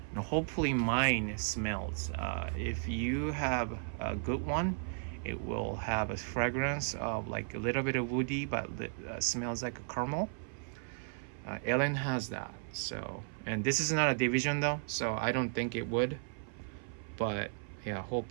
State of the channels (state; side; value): silent; left; 54 dB below the other